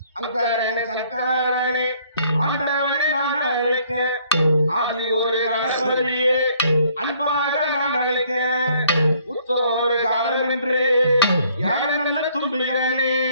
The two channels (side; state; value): both; inverted; correlation -0.63